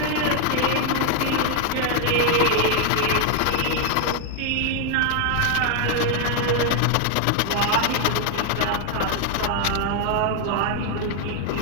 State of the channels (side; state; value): both; different; correlation 0.01